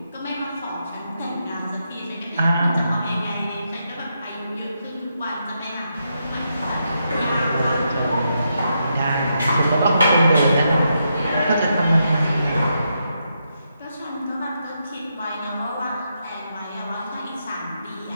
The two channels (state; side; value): inverted; both; correlation -0.82